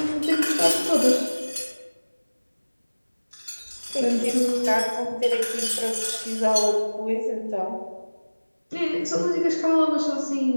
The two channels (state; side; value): inverted; both; correlation -1.00